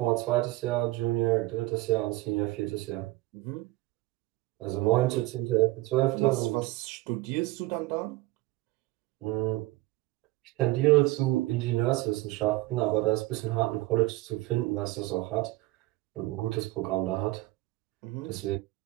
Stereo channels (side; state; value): left; quieter; 19.3 dB